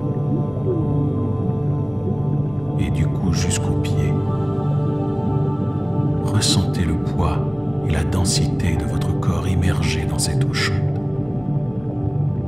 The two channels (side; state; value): left; noise; rumble, 24 dB below the sound